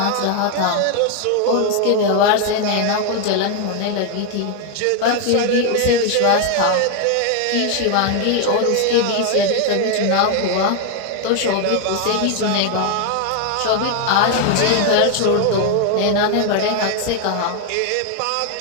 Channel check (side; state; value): both; different; correlation 0.01